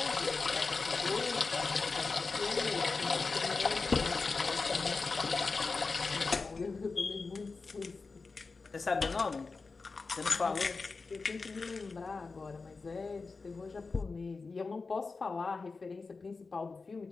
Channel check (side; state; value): right; quieter; 4.2 dB